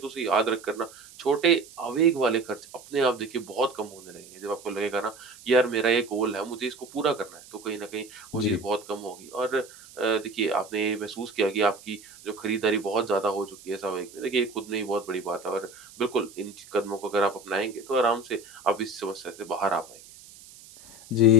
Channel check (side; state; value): right; noise; hiss, 20 dB below the sound